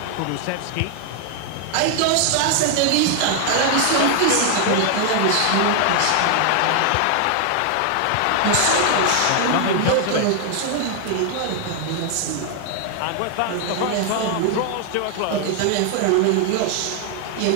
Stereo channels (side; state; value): both; different; correlation 0.00